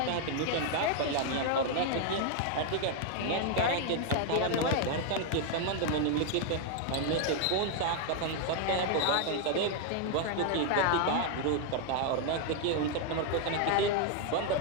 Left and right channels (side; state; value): both; different; correlation 0.00